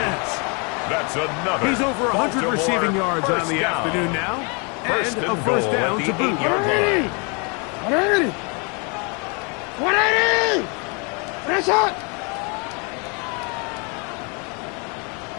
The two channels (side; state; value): right; quieter; 33.6 dB